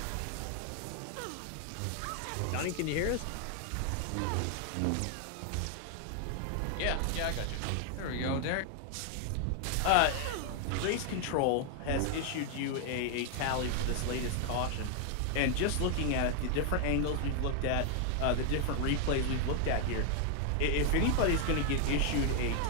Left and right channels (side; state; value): both; different; correlation 0.00